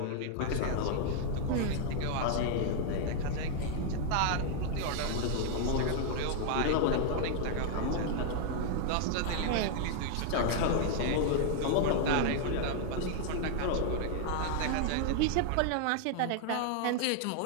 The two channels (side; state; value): both; different; correlation 0.00